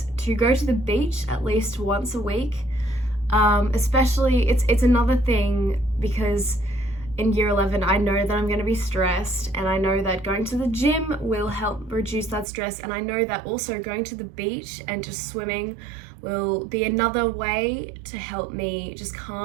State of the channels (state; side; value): drops out; left; at 12.5 s